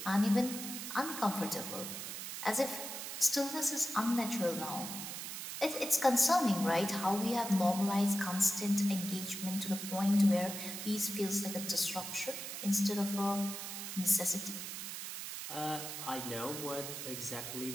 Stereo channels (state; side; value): noise; right; hiss, 7 dB below the sound